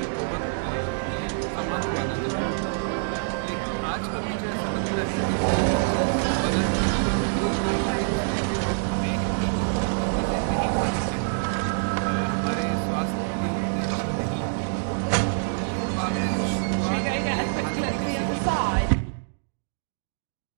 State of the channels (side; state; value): left; silent; digital silence